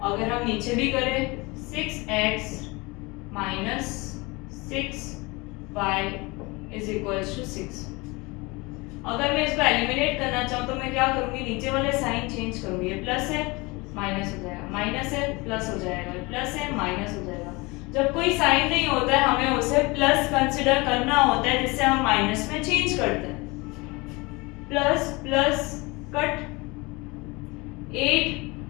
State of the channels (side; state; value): right; quieter; 25.0 dB